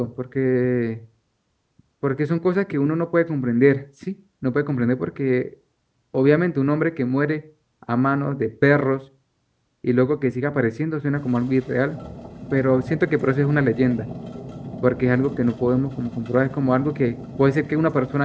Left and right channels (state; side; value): identical; both; correlation 1.00